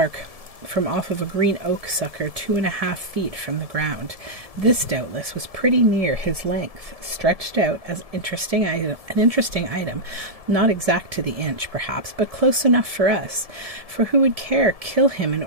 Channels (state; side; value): late; left; 1.7 ms